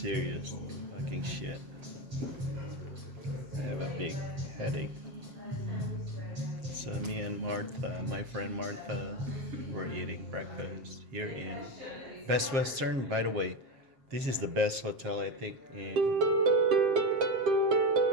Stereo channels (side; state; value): left; late; 7.5 ms